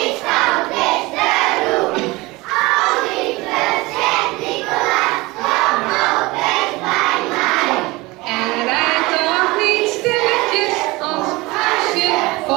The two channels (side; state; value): left; quieter; 22.2 dB